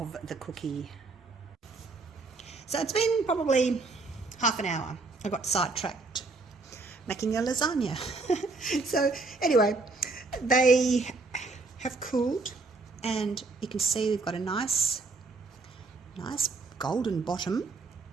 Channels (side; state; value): left; quieter; 3.7 dB